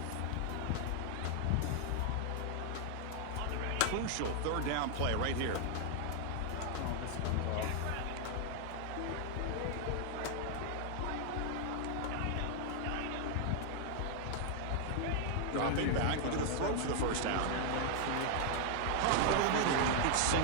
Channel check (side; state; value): both; different; correlation 0.00